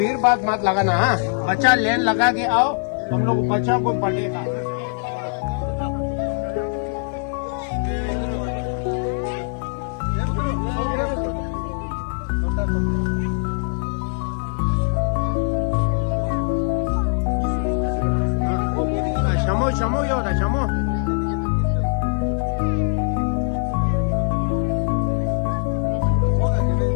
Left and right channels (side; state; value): right; silent; digital silence